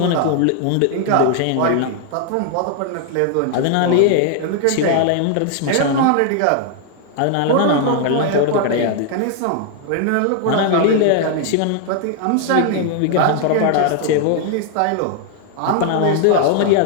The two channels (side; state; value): both; different; correlation 0.00